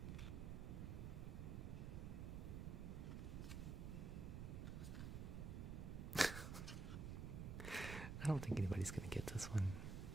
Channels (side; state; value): right; noise; rumble, 4 dB below the sound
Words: I don't think anybody's gonna get this one.